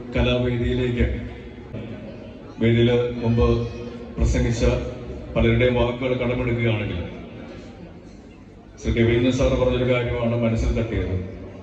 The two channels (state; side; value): identical; both; correlation 1.00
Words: കലാവേദിയിലേക്ക്, വേദിയിൽ മുമ്പ് പ്രസംഗിച്ച പലരുടെയും വാക്കുകൾ കടമെടുക്കുകയാണെങ്കിൽ ശ്രീ രവീന്ദ്രൻ സാർ പറഞ്ഞൊരു കാര്യമാണ് മനസ്സിൽ തട്ടിയത്.